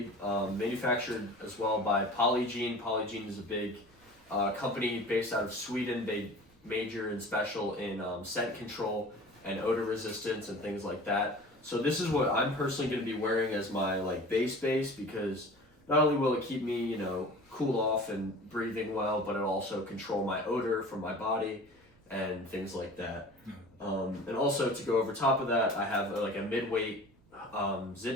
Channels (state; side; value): noise; right; rumble, 29 dB below the sound